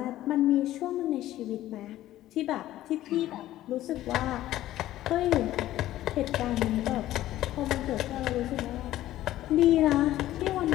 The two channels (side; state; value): right; quieter; 14.3 dB